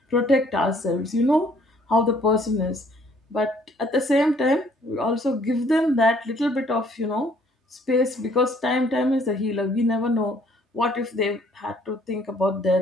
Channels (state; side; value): normal; both; correlation 0.62